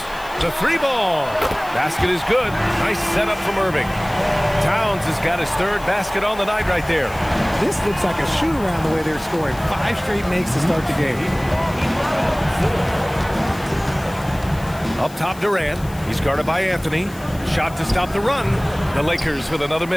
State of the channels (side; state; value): left; noise; hiss, 20 dB below the sound